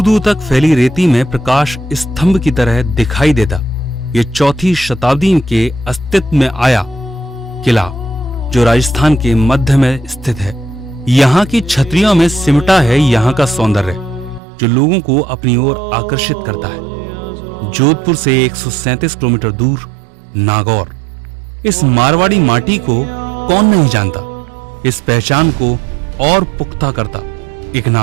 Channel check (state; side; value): drops out; left; at 14.4 s